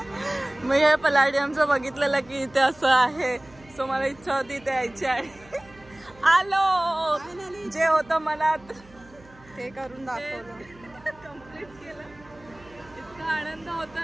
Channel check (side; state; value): right; noise; hum, 25 dB below the sound